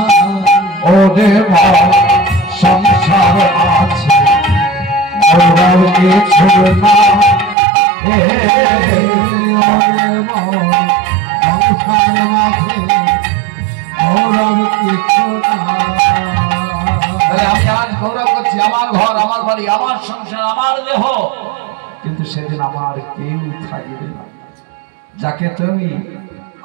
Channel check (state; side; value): drops out; left; at 7.6 s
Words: ওরে সংসার আছে ওরাও কিছু না, সংসার মাঝে গৌরব কিছু না। আমি আজ গৌরব করছি, আমার ঘর, আমার বাড়ি, আমার সংসার, আমার দেহ, কিন্তু সেদিন আমার কেউ থাকবে না। যাকে তুমি